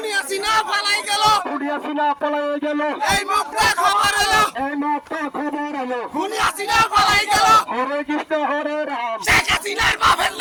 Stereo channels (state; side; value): identical; both; correlation 1.00